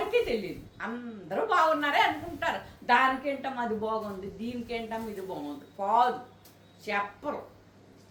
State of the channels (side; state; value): both; identical; correlation 1.00